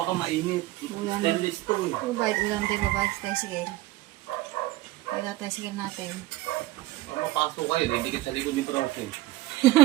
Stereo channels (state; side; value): quieter; left; 17.4 dB